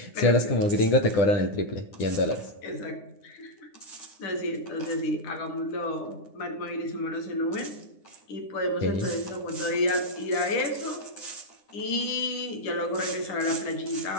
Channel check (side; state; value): right; late; 9.8 ms